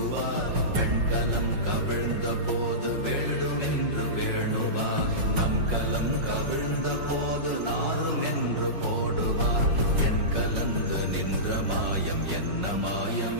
பெண்கலம் கவிழ்ந்த போது வேடும் என்று வேணுவார், நம் கலம் கவிழ்ந்த போது நாரும் என்று போடுவார். என் கலந்து நின்ற மாயம் என்ன மாயம்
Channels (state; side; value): late; left; 5.5 ms